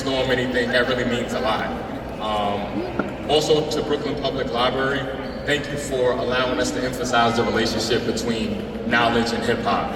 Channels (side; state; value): both; identical; correlation 1.00